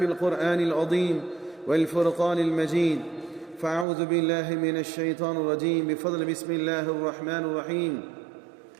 القرآن العظيم والفرقان المجيد: فأعوذ بالله من الشيطان الرجيم بفضل بسم الله الرحمن الرحيم.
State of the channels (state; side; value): drops out; left; at 3.9 s